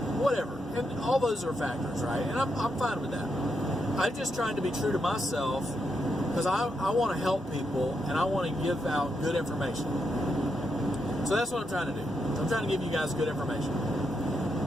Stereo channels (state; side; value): normal; both; correlation 0.82